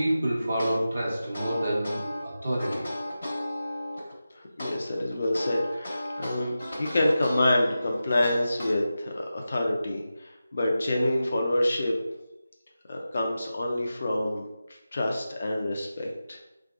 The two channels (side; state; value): both; inverted; correlation -0.92